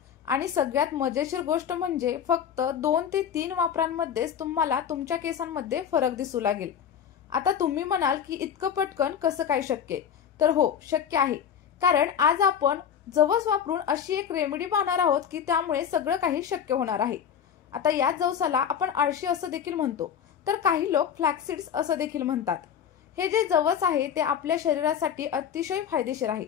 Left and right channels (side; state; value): right; quieter; 8.4 dB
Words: आणि सगळ्यात मजेशीर गोष्ट म्हणजे फक्त 2 ते 3 वापरांमध्येच तुम्हाला तुमच्या केसांमध्ये फरक दिसू लागेल। आता तुम्ही म्हणाल की इतकं पटकन कसं काय शक्य? तर हो, शक्य आहे। कारण आज आपण जवस वापरून अशी एक रेमेडी पाहणार आहोत की त्यामुळे सगळं काही शक्य होणार आहे। आता या जवसाला आपण आळशी असं देखील म्हणतो, तर काही लोक फ्लॅक्सीड्स असं देखील म्हणतात। हे जे जवस आहे ते आपल्या शरीरासाठी अतिशय फायदेशीर आहे,